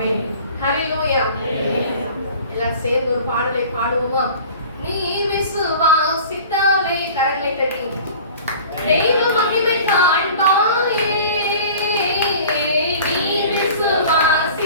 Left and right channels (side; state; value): both; inverted; correlation -0.43